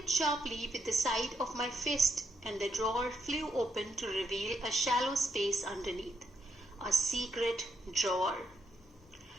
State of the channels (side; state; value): both; normal; correlation 0.80